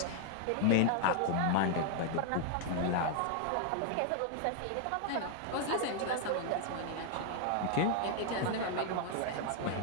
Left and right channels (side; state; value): both; different; correlation 0.00